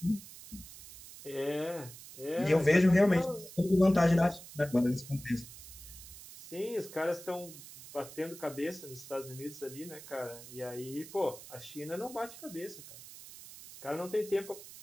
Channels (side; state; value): right; noise; hiss, 16 dB below the sound